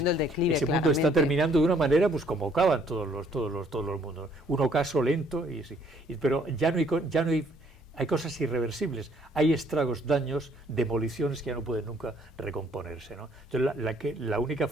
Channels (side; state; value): both; normal; correlation 0.63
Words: el declive. Ese mundo está terminando de una manera, pues como acaban todos los mundos. Un ocaso lento, pero ya no hay cosas irreversibles, hay estragos, daños, demoliciones que ya no pueden nunca recomponerse, ¿no? Entonces la única